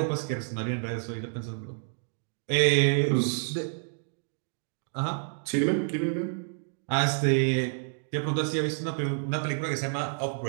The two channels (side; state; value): left; silent; digital silence